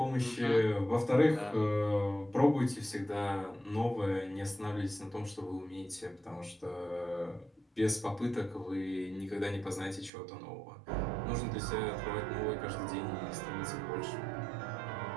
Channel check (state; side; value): drops out; left; at 10.1 s